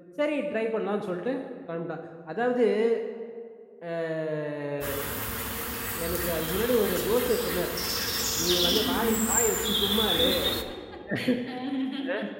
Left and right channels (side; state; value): both; identical; correlation 1.00